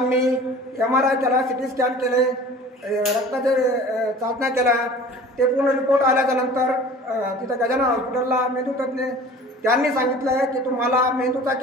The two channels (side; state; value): both; normal; correlation 0.44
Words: MRI केला, CT स्कॅन केले, रक्ताचे चाचण्या केल्या. ते पूर्ण रिपोर्ट आल्याच्या नंतर तिथं गजानन हॉस्पिटलला मेंदूतज्ञ त्यांनी सांगितलं की तुम्हाला मेंदूचा